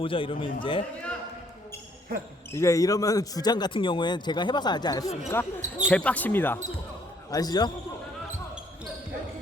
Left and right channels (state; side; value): normal; both; correlation 0.65